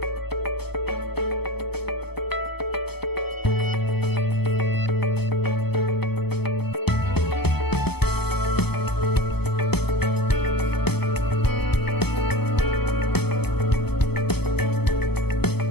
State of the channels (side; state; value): right; late; 0.97 ms